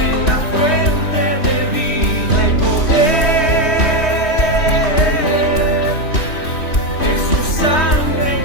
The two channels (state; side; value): late; right; 3.1 ms